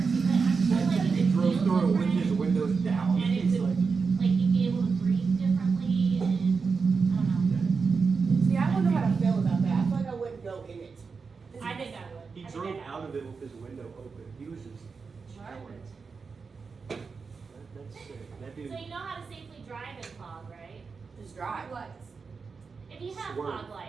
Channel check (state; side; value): quieter; left; 5.0 dB